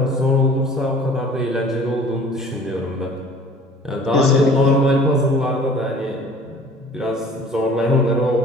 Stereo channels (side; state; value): both; normal; correlation 0.49